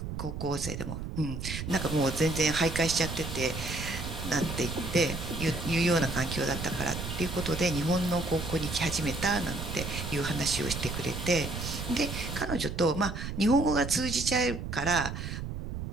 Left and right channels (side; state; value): right; noise; rumble, 6 dB below the sound